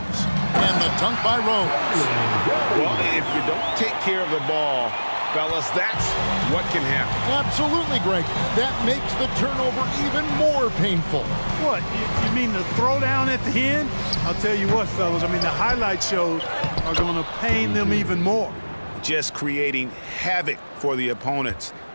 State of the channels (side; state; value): both; inverted; correlation -1.00